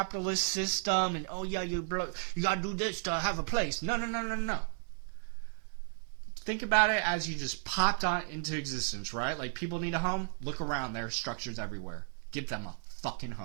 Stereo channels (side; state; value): left; silent; digital silence